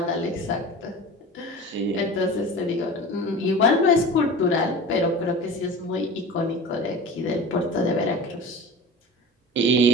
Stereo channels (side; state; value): both; normal; correlation 0.35